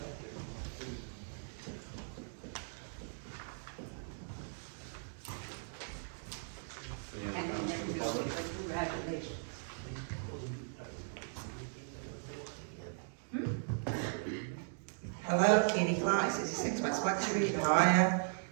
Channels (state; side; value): silent; left; digital silence